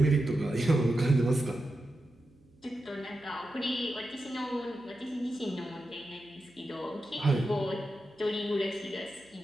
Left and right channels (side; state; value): right; noise; hum, 30 dB below the sound